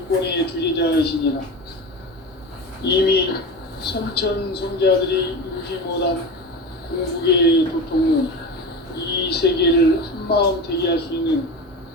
주제자이시니라. 이미 선천성자들이 이루지 못한 궁극의 도통은 이 세계를 한마음 되게 할 수 있는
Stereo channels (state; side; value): normal; both; correlation 0.27